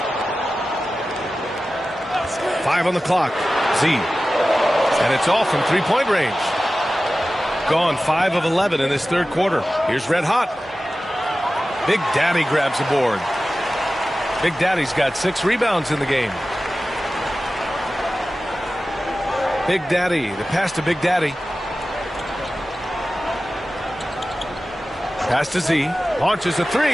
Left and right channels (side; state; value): both; normal; correlation 0.95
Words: 5 on the clock. Z. And it's off from three-point range. Gone 5 of 11 in this third quarter. Here's Red Hot. Big Daddy grabs the board. Big Daddy's got 6 rebounds in the game. Big Daddy, the pass to Big Daddy. Pass to Z. Launches a 3.